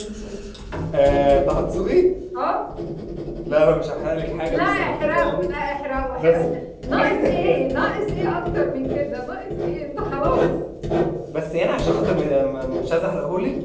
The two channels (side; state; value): both; identical; correlation 1.00